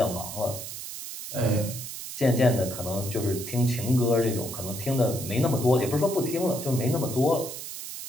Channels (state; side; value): noise; right; hiss, 9 dB below the sound